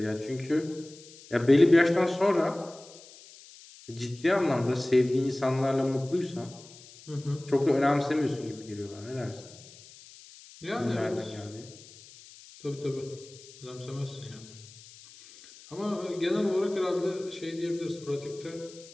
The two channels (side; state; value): left; noise; hiss, 20 dB below the sound